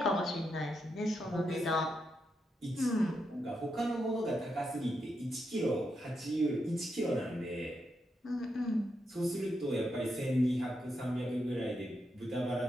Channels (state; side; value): normal; both; correlation 0.83